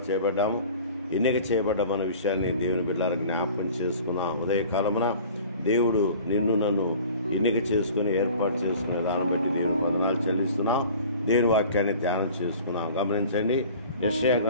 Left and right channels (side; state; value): both; inverted; correlation -0.44